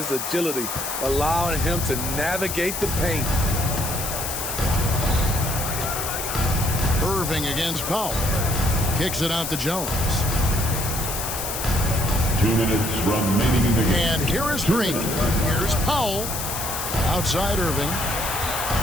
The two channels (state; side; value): noise; left; hiss, 4 dB below the sound